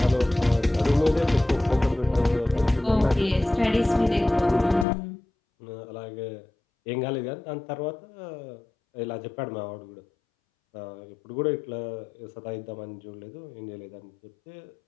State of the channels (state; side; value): drops out; right; at 4.9 s